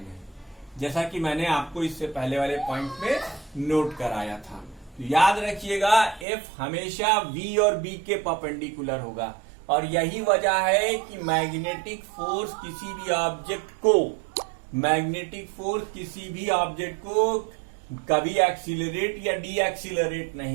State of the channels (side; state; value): left; drops out; at 6.2 s